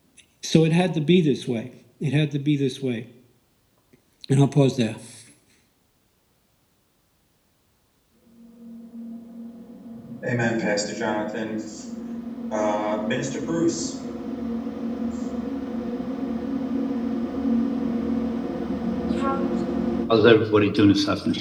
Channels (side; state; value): both; identical; correlation 1.00